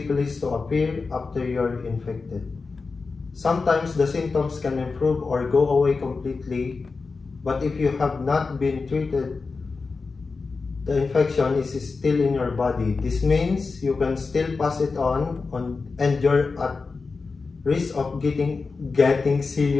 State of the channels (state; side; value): quieter; right; 4.3 dB